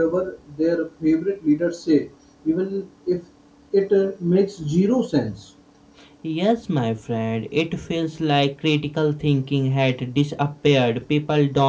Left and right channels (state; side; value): identical; both; correlation 1.00